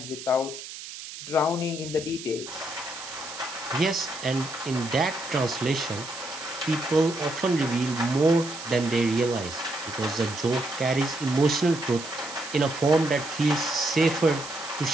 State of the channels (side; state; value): right; noise; hiss, 12 dB below the sound